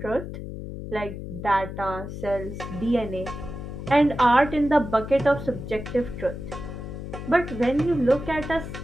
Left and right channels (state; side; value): noise; left; hum, 8 dB below the sound